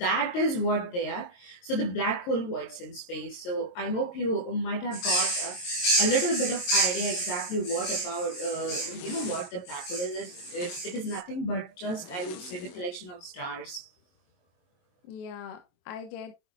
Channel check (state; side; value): late; right; 23 ms